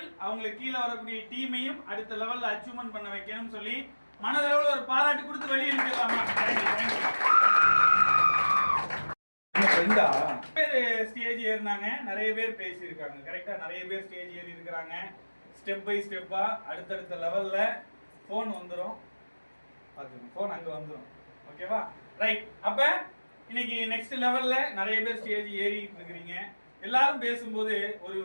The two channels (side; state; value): both; inverted; correlation -1.00